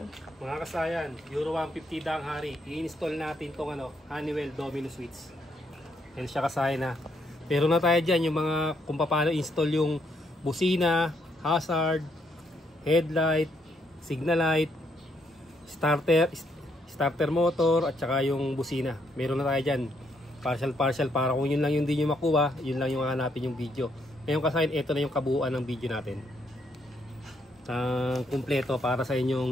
Mga kasayan, Euro 150 daang hari. I-install natin tong Honeywell Domino Switch. Yan siya kasayan na. Pero na tayo dyan yung mga kung paano install yung busina, hazard, headlight, signal light, starter motor at saka yung busina. Meron na tayo dyan. Partial para kung yun lang yung hindi nyo makuha, yun lang yung hanapin yung video. Ngayon kasayan, ito na yung kabuuan ng video natin. Kumpleto para sa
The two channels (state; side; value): normal; both; correlation 0.74